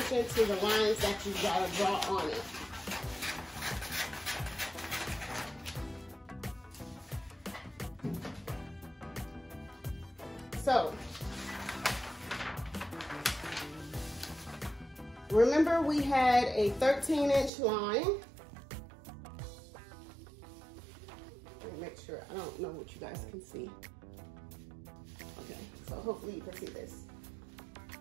to the lines that you gotta draw on it. So, remember we had a 13-inch line. Let me make sure, I don't know what you guys can see. Okay, so hopefully you can see this.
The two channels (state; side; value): drops out; left; at 17.5 s